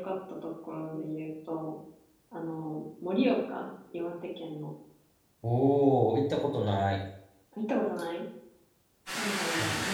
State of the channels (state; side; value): identical; both; correlation 1.00